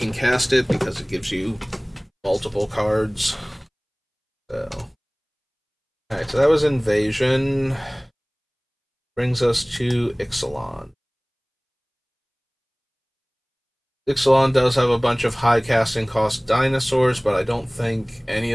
cast it because it gives you multiple cards. So. Alright, so that was invasion. Brings us to Ixalan. Ixalan does have a bunch of high casting cost dinosaurs, but I don't think any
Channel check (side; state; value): both; identical; correlation 1.00